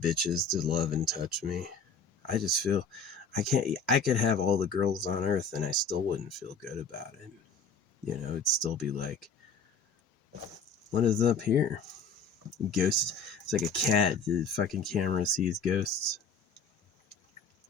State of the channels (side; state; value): right; quieter; 4.4 dB